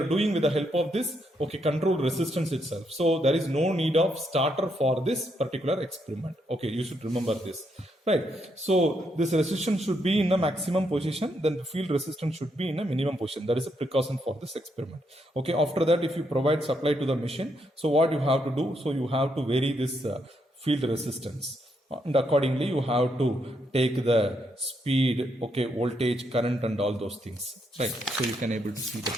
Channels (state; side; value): normal; both; correlation 0.77